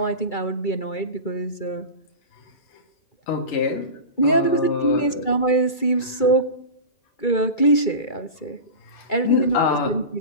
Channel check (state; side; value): late; right; 2.3 ms